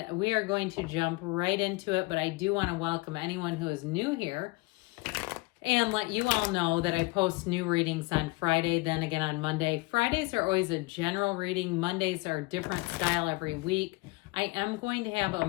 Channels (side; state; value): right; quieter; 25.1 dB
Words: we are going to jump right into it, but I do want to welcome anyone who is new here and let you all know that I post new readings on Friday, then again on Monday. Fridays are always a general reading. Mondays are a different style every week. I am going to have a